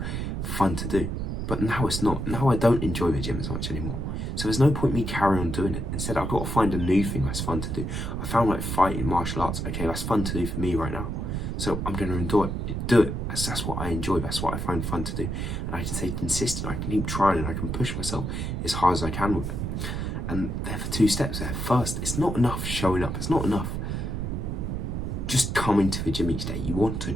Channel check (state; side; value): noise; right; rumble, 3 dB below the sound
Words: fun to do. But now it's not. Now I don't enjoy the gym as much anymore. So there's no point me carrying on doing it. Instead, I've got to find a new thing that's fun to do. I found like fighting, martial arts. Okay, that's fun to do for me right now. So I'm going to do it. That's what I enjoy. That's what I find fun to do. And I can stay consistent. I can keep trying and I can push myself as hard as I can with it. And there are 2 steps there. First, it's not enough showing up. It's not enough just coming to the gym each day. You want to